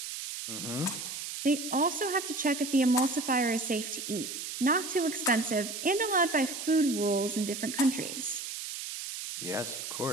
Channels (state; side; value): noise; right; hiss, 7 dB below the sound